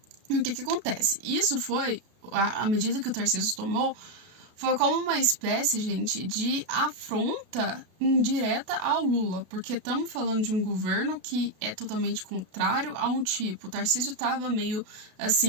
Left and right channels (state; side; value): late; left; 33 ms